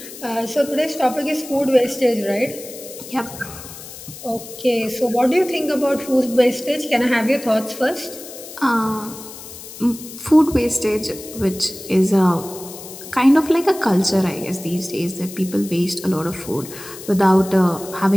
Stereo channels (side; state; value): left; noise; hiss, 14 dB below the sound